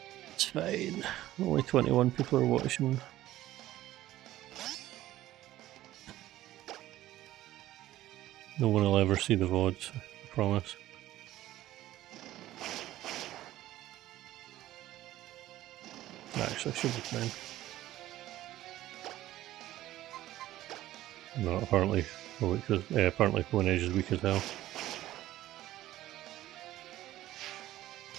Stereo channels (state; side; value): quieter; left; 14.7 dB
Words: Only 21 people are watching. No one will ever see the VODs, I promise. Actually, I should be fine. No, apparently, apparently Phone Edge is weak as hell.